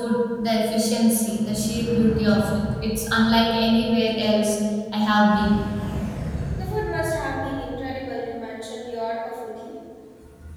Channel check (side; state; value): both; identical; correlation 1.00